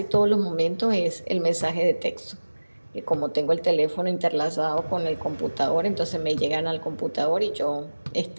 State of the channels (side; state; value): both; inverted; correlation -1.00